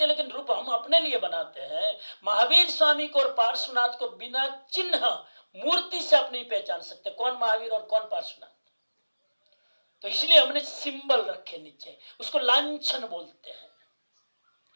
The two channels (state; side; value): inverted; both; correlation -1.00